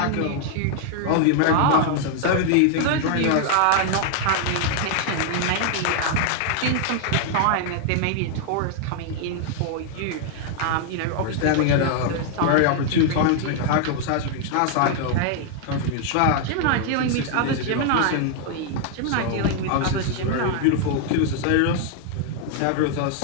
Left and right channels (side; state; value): both; different; correlation 0.00